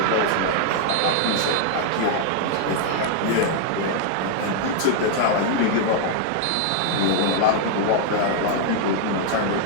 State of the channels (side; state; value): both; different; correlation 0.00